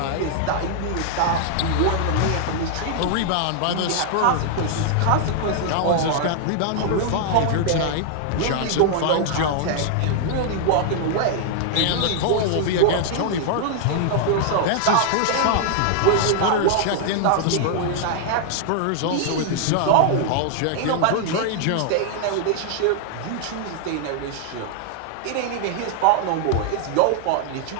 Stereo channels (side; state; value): both; different; correlation -0.01